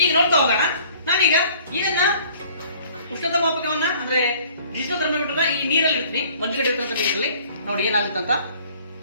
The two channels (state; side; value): inverted; both; correlation -0.54